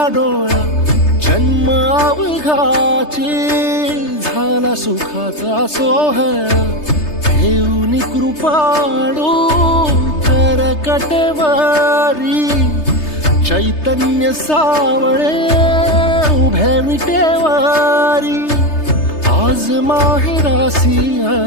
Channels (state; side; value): late; right; 3.3 ms